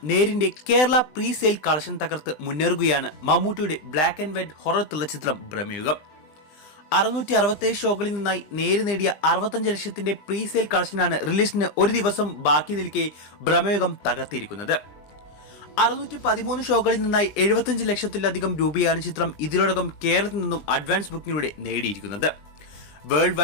നേരിന്റെ കേരള പ്രീ സെയിൽ കളക്ഷൻ തകർത്ത് മുന്നേറുകയാണ് മമ്മൂട്ടിയുടെ black and white horror thriller ചിത്രം ഭ്രമയുഗം. 667 ഷോകളിൽ നിന്നായി നേര് നേടിയ 65 ലക്ഷത്തിന്റെ പ്രീ സെയിൽ കളക്ഷനാണ് റിലീസിന് ഒരു ദിവസം ബാക്കി നിൽക്കെ ഭ്രമയുഗം തകർത്തിരിക്കുന്നത്. 613 ഷോകളിൽ നിന്നായി 75 ലക്ഷത്തിലധികം രൂപയാണ് ചിത്രം ഇതിനോടകം കേരളത്തിൽ നിന്നും അഡ്വാൻസ് ബുക്കിങ്ങിലൂടെ നേടിയിരിക്കുന്നത്. വേൾഡ്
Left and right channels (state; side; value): late; right; 20 ms